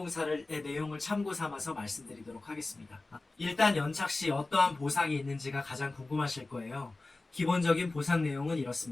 내용을 참고 삼아서 말씀드리도록 하겠습니다. 일단 연착 시 어떠한 보상이 있는지가 가장 궁금하실 거예요. 기본적인 보상 내용은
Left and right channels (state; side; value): quieter; right; 3.2 dB